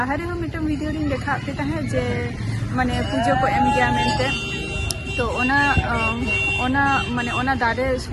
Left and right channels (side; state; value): both; identical; correlation 1.00